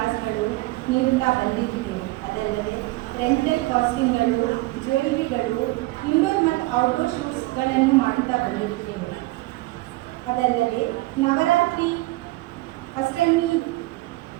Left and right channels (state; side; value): quieter; left; 20.6 dB